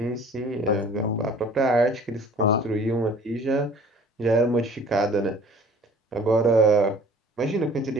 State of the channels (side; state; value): both; normal; correlation 0.50